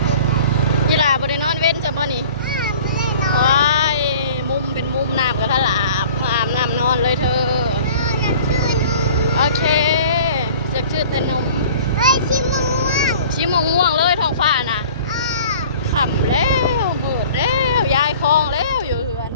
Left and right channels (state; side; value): inverted; both; correlation -0.46